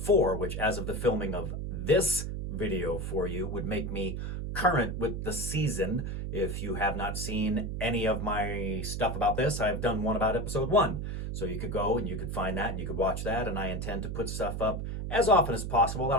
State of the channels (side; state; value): right; noise; hum, 4 dB below the sound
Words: which, as of the filming of this video for you, would make me current with the season. If you have not seen any of my stuff about this, I've done one about episode 1. So you could go and you could find that and you could watch that, and I intend to put stuff up as often as possible. I